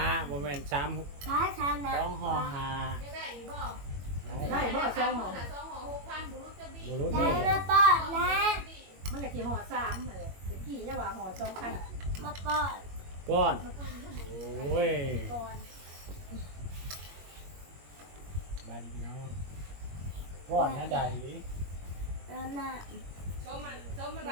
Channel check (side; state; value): left; late; 21 ms